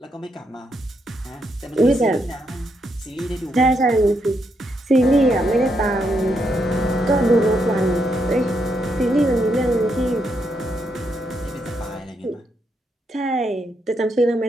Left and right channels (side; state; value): both; normal; correlation 0.79